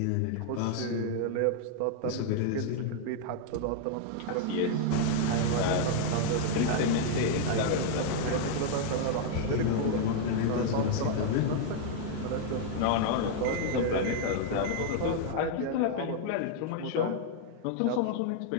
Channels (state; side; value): different; both; correlation 0.00